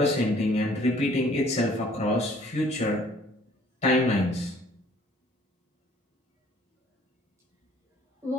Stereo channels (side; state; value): both; normal; correlation 0.57